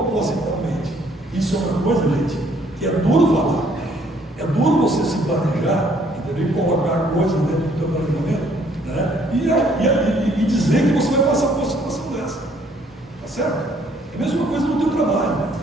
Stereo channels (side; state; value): both; normal; correlation 0.64